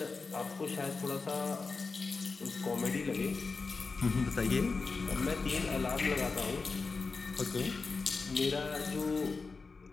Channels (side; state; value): right; quieter; 4.3 dB